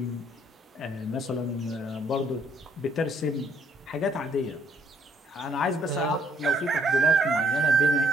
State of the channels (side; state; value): both; normal; correlation 0.66